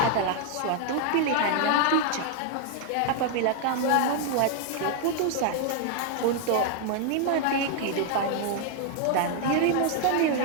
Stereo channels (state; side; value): different; both; correlation 0.00